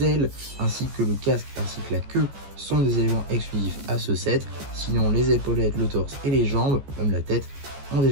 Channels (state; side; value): late; left; 14 ms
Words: ailes ainsi que le casque ainsi que la queue sont des éléments exclusifs à ce set. Sinon, les épaulettes, le torse et les jambes, même la tête, ont